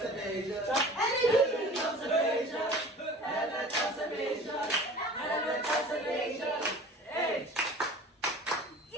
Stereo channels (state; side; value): normal; both; correlation 0.42